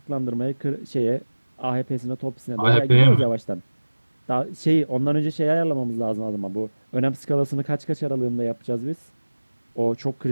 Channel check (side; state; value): both; inverted; correlation -1.00